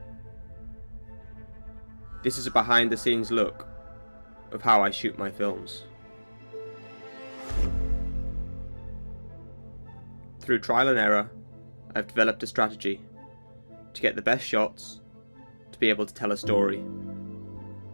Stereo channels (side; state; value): both; inverted; correlation -1.00